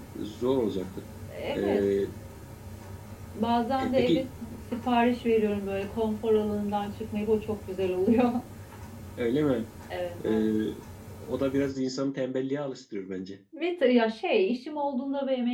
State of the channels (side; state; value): both; identical; correlation 1.00